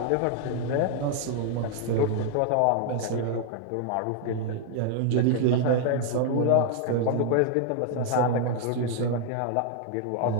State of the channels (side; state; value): both; different; correlation 0.00